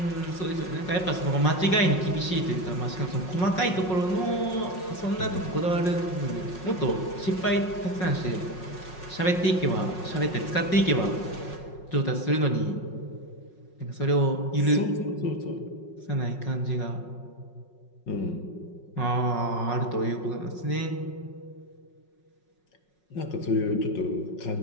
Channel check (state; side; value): late; right; 5.5 ms